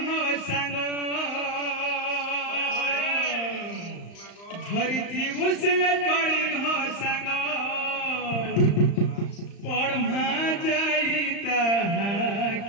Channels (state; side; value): late; right; 35 ms